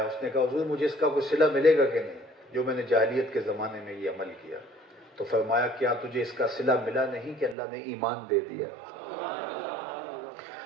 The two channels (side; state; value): left; drops out; at 7.6 s